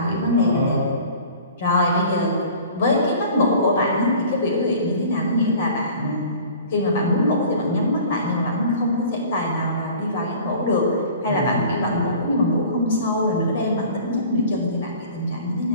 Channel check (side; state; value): both; inverted; correlation -0.45